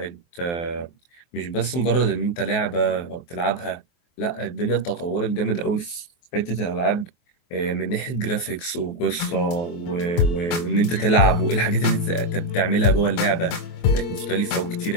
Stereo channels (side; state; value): right; late; 23 ms